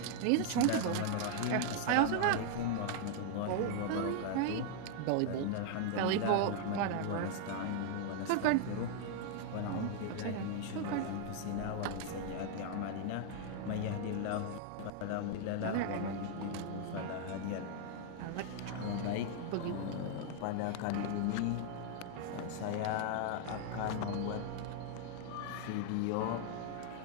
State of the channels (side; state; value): both; different; correlation 0.00